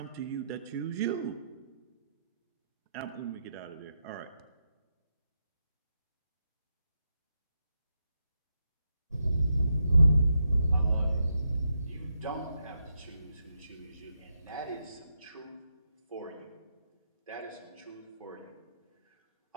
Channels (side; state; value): both; inverted; correlation -0.84